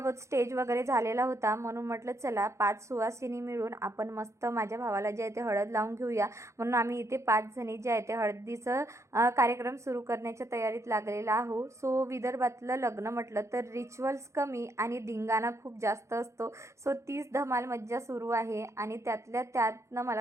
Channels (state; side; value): late; left; 0.14 ms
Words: स्टेज वगैरे झालेला होता, म्हणून म्हटलं चला 5 सुवासिनी मिळून आपण मस्त माझ्या भावाला जे आहे ते हळद लावून घेऊया। म्हणून आम्ही इथे 5 जणी जे आहे ते हळदीचं कार्यक्रम सुरू करण्याच्या तयारीत लागलेला आहो। सो विदर्भातलं लग्न म्हटलं तर रिच्युअल्स कमी आणि धिंगाणा खूप जास्त असतो। सो तीच धमाल मज्जा सुरू आहे। आणि त्यातल्या त्यातनं